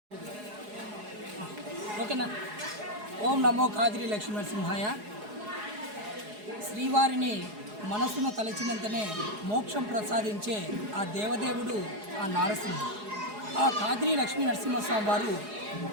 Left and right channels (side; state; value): left; late; 4.8 ms